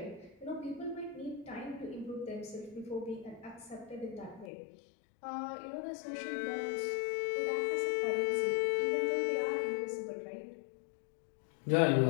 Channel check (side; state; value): right; drops out; at 4.5 s